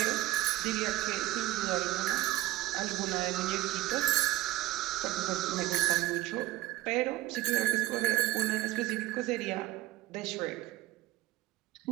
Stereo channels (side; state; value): left; quieter; 16.9 dB